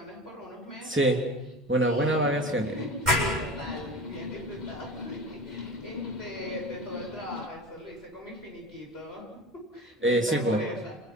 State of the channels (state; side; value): normal; both; correlation 0.34